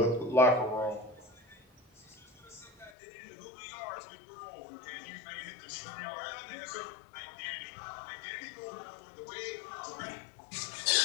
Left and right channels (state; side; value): drops out; right; at 2.9 s